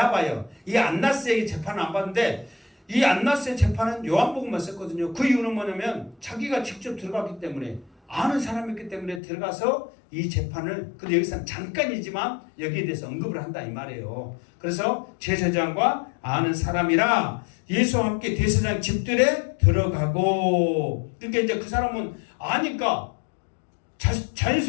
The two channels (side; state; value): right; drops out; at 9.2 s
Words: 이 안나스에게 재판을 안 봤는데 이 안나스의 재판은 요한복음만 썼거든요. 그 이유는 뭐냐면 자기가 직접 들어갔기 때문에, 아는 사람이기 때문에 들어가서 이 재판을, 근데 여기서는 잠깐이지만 여기에 대해서 언급을 한다 이 말이에요. 그래서 제사장과 아는 사람이라 예수와 함께 대제사장 집들에 들어가고, 그러니까 이제 그 사람은 아니까